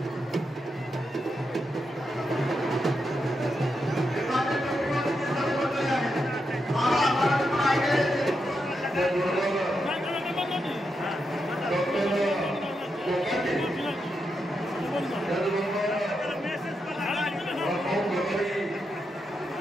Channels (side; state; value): both; normal; correlation 0.84